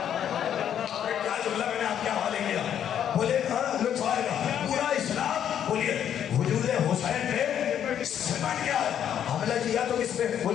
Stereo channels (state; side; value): quieter; right; 9.5 dB